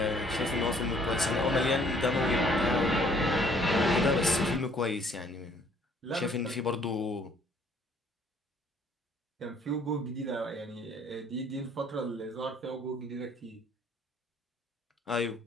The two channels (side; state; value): both; normal; correlation 0.61